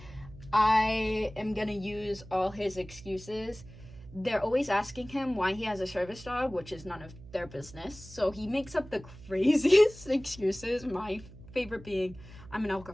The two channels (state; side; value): noise; right; hum, 18 dB below the sound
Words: I am going to use all his excuses. They're always asking him why he has a service dog, which is none of their business. So he makes up the craziest excuses. My favorite being, I'm an